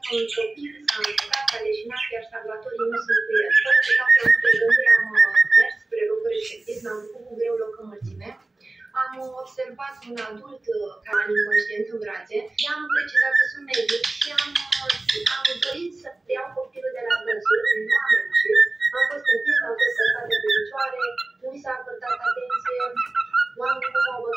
că un copil s-a încurcat, s-a leșinat, iar salvatorii nu sunt cu el. Fără să stau prea multe gânduri, am mers spre locul respectiv, mi-am făcut cu greu loc în mulțime. Am observat un adult care a inconștient în brațe. I-am precizat că sunt medic și am dorit să iau copilul de la dânsul, nu am reușit. Am fost întins, am fost lăsată pe picioare, nu mi s-a acordat atenție, oamenii nu m-au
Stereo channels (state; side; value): quieter; left; 3.1 dB